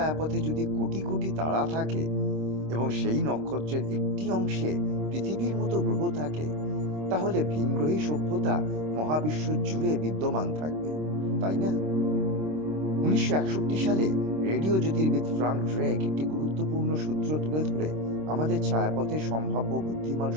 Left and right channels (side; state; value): left; late; 26 ms